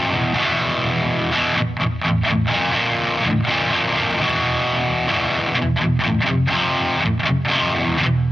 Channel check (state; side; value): normal; both; correlation 0.93